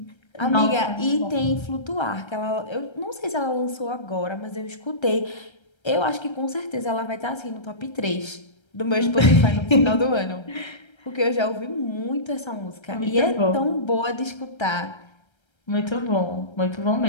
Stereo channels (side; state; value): right; late; 1.3 ms